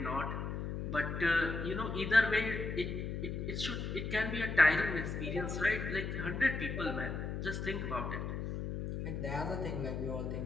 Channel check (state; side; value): noise; left; hum, 4 dB below the sound